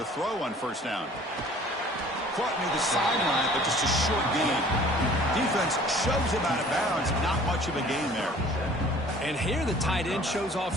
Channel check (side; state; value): both; normal; correlation 0.50